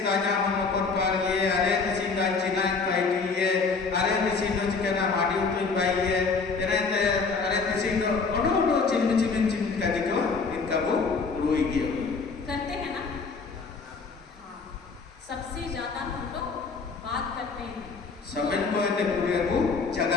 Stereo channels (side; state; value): right; quieter; 4.6 dB